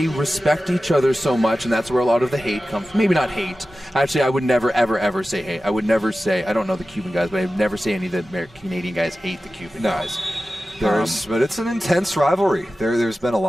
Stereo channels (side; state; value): both; normal; correlation 0.95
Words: respect each other so much, and that's where a lot of the hate comes from. Maybe not hate. Actually, I would never, ever, ever say hate. I would never say, I don't know the Cuban guys, but I would never say any of the Canadian guys hate the Cuban guys. But it's an intense rivalry. There's been a